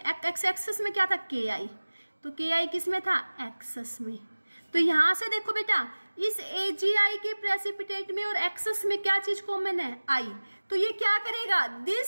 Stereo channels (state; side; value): inverted; both; correlation -1.00